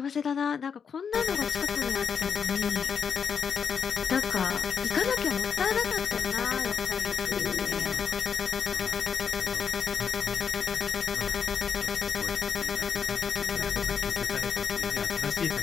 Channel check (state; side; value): quieter; right; 6.7 dB